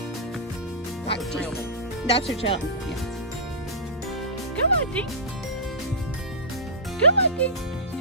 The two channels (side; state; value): both; normal; correlation -0.17